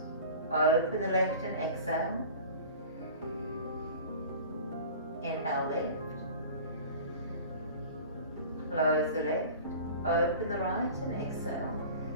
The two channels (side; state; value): both; inverted; correlation -0.39